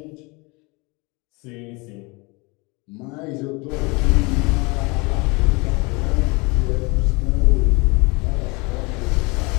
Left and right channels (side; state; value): right; quieter; 27.3 dB